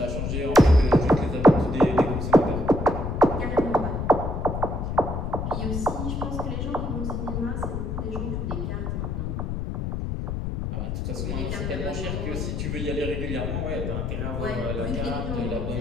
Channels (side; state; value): left; noise; rumble, 3 dB below the sound